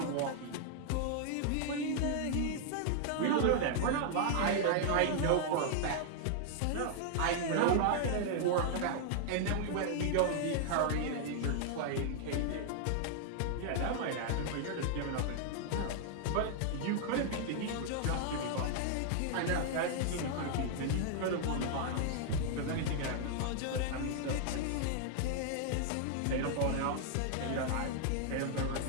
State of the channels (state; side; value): different; both; correlation 0.00